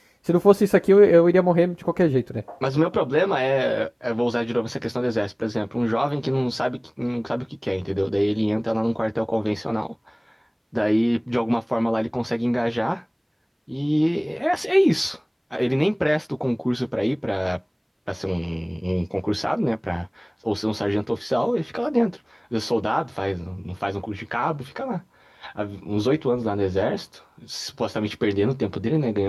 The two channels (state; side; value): identical; both; correlation 1.00